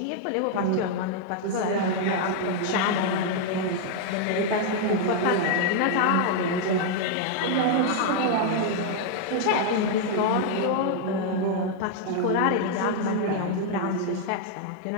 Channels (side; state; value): both; different; correlation 0.00